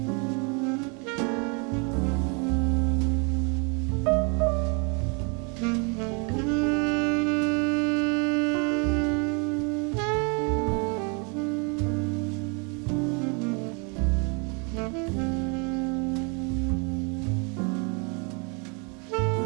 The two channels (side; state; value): left; quieter; 34.2 dB